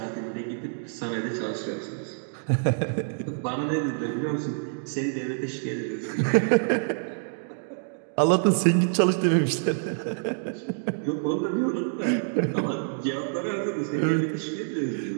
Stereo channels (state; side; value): silent; left; digital silence